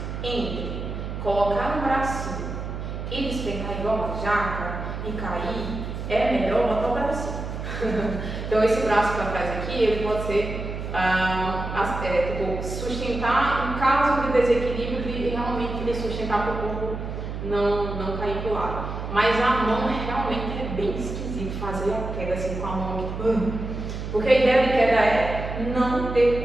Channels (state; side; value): noise; right; hum, 6 dB below the sound